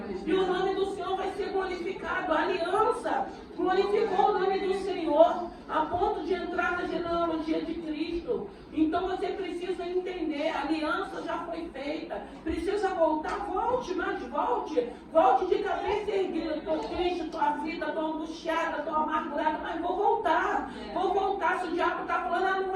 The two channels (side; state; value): both; identical; correlation 1.00